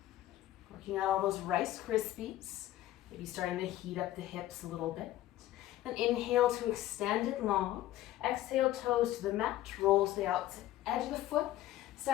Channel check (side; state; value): right; quieter; 14.3 dB